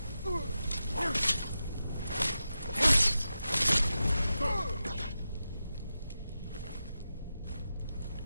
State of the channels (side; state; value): both; inverted; correlation -0.91